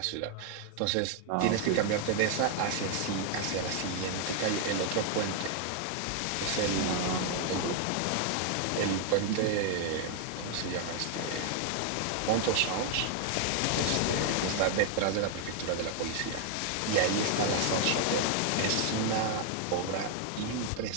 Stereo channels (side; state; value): both; different; correlation 0.00